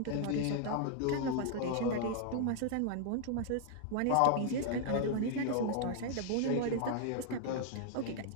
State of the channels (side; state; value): both; different; correlation -0.01